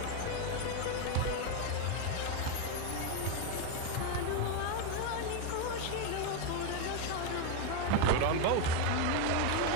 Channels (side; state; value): both; different; correlation 0.02